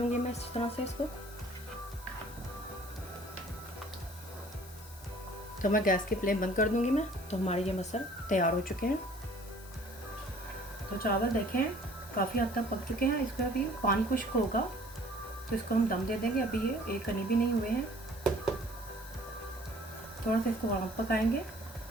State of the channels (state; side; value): noise; left; hiss, 19 dB below the sound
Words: मैं इस तरह से इसको। तो मैं गैस की फ्लेम बंद कर दूँगी मैं। तो हमारे ये मसर तैयार हो चुके हैं। तो चावल देखें काफ़ी हद तक पक चुके हैं। इसमें अभी पानी खुश्क होगा तो इसको हम दम दे देंगे। अभी ये एक कनी भी नहीं हुए हैं। थोड़ा सा इसको और पकाएंगे